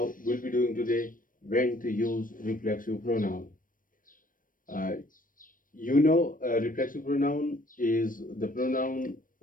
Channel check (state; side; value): late; right; 0.40 ms